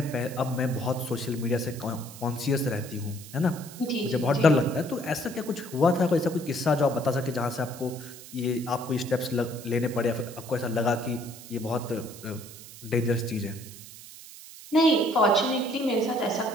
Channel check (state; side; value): noise; right; hiss, 16 dB below the sound